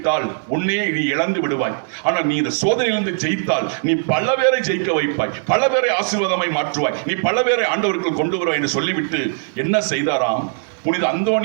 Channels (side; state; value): left; silent; digital silence